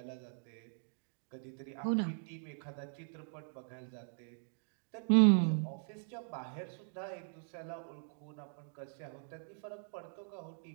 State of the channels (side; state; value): left; silent; digital silence